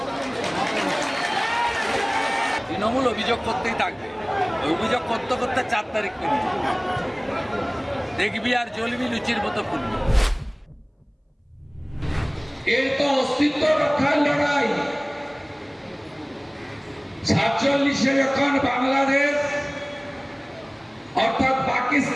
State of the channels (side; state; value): both; identical; correlation 1.00